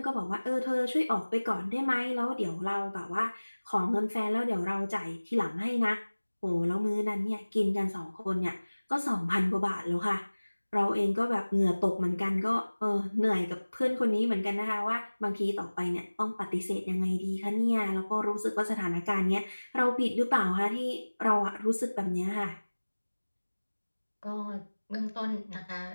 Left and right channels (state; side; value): inverted; both; correlation -1.00